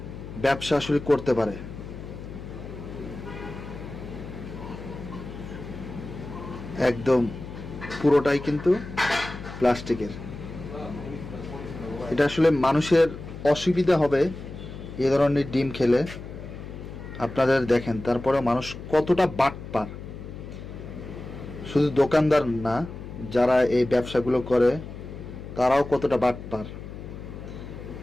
ব্যবসা আসলে করতে পারে। একদম পুরোটাই কিন্তু প্লাস্টিকের। এটা আসলে মানুষের অসুবিধা হবে এ ধরনের ডিম খেলে। আপনাদের দেখেন, তারপরে মানুষ কতটা বাটপার। শুধু দোকানদার না, যারা এই ব্যবসাগুলো করে তারাও কতটা বাটপার।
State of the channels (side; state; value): left; noise; hum, 11 dB below the sound